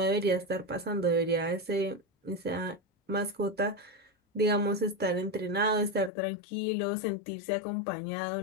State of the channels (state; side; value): drops out; right; at 6.1 s